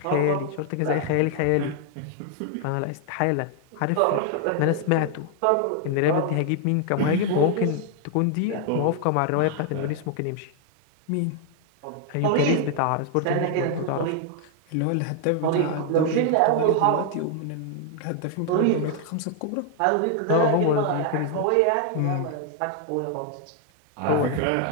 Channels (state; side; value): different; both; correlation 0.00